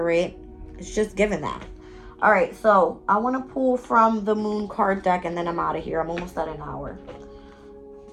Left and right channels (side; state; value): both; identical; correlation 1.00